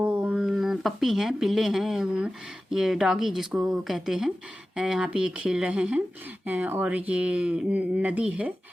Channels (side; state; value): both; normal; correlation 0.95